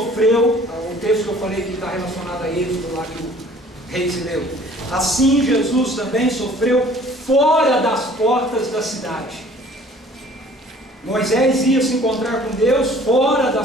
o texto que eu falei que está relacionado a Êxodo, lá que o rei se leu. Assim Jesus também sofreu fora das portas da cidade. Moisés ia se encontrar com Deus fora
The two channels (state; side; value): normal; both; correlation 0.53